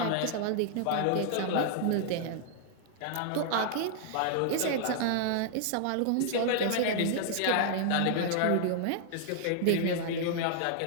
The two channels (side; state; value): both; different; correlation -0.01